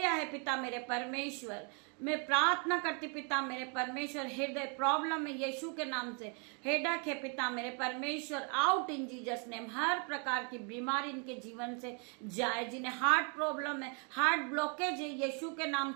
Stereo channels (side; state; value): left; quieter; 37.4 dB